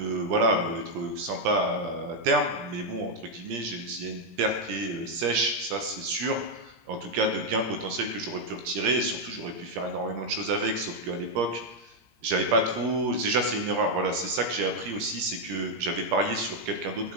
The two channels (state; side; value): late; left; 17 ms